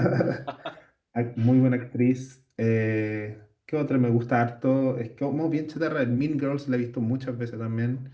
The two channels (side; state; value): both; identical; correlation 1.00